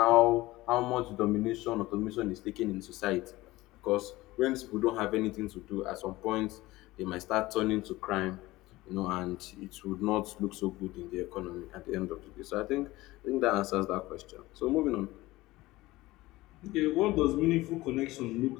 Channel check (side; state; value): right; quieter; 18.8 dB